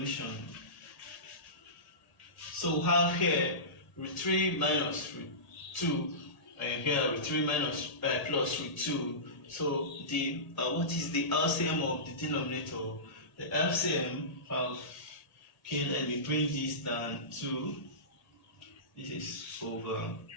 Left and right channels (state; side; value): late; right; 1.8 ms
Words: So we have here root 3 minus root 2, and here root 3 minus plus root 2. So the what is the LCM of the denominator? The LCM of, okay, let me bring this down to, this is over